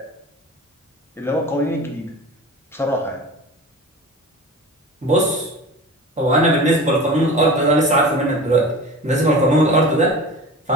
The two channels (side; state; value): both; normal; correlation 0.35